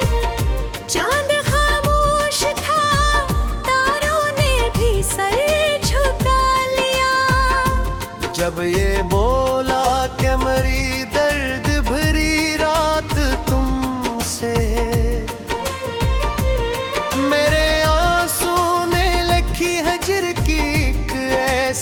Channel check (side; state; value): both; identical; correlation 1.00